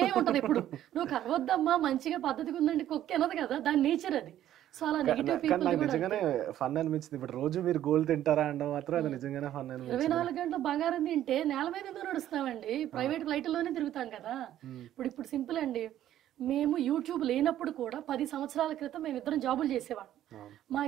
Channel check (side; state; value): left; quieter; 12.2 dB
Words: ఉంటది. ఇప్పుడు నువ్వు కరవద్దమ్మా మంచిగా పద్ధతిగా ఉందండి కుక్క అనదు కదా, దాని నేచర్ అది. సో అలా నెగిటివ్ పీపుల్ నిజంగానే ఫన్ అనిపించింది. ఇప్పుడు రోజు మీరు గోల్ తింటారా అంటే మాత్రం అది నిజంగానే ఫన్ అనిపించింది. 24 గంటలు బంగారం తింటే నేల మీద ఎందుకు నడుస్తామండి, ప్రైవేట్ ఫ్లైట్లోనే తిరుగుతాం కదా. ఇప్పుడు సింపుల్ అండి, మేము యూట్యూబ్ లేనప్పుడు కూడా 10 సంవత్సరాల క్రితం మేము ఇద్దరం జాబులు చేసేవాళ్ళం. మా